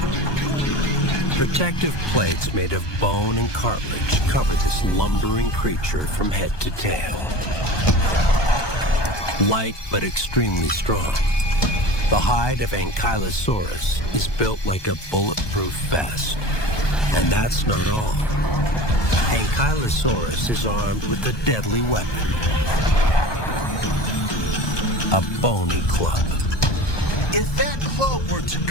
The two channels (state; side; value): late; right; 1.2 ms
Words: Protective plates made of bone and cartilage cover this lumbering creature from head to tail. Light but extremely strong. The hide of Ankylosaurus is built like a bulletproof vest. And that's not all. Ankylosaurus is armed with a deadly weapon. A bony club. If that club were to